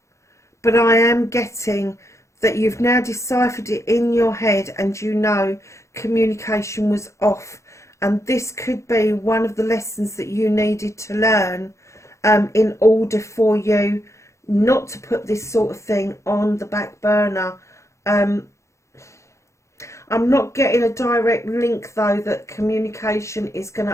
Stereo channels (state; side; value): late; right; 0.14 ms